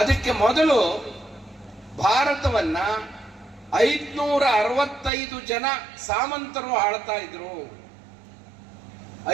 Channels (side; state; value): left; drops out; at 5.1 s